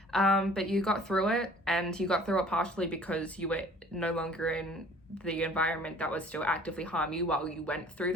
But you got through it, and you got through it partially because you were no longer in the environment that was still actively harm you while you went through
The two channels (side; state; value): both; normal; correlation 0.52